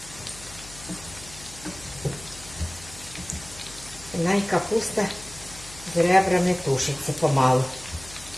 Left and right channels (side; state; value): left; noise; hum, 18 dB below the sound